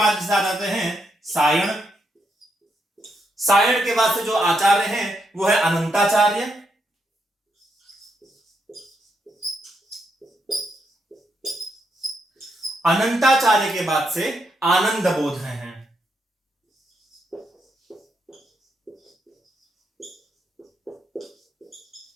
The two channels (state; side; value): normal; both; correlation 0.80